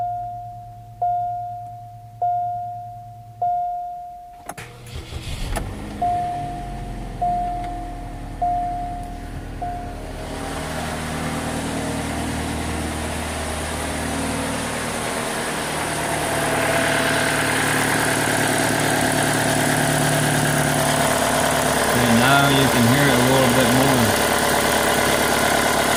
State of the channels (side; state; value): both; identical; correlation 1.00